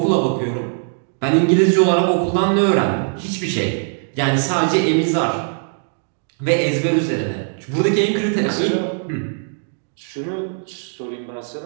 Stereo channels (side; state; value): left; silent; digital silence